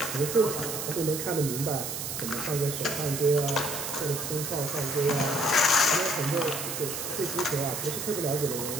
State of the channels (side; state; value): right; noise; hiss, 4 dB below the sound